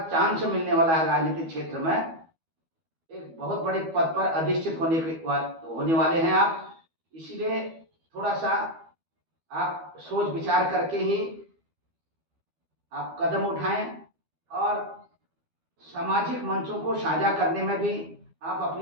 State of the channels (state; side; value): late; left; 12 ms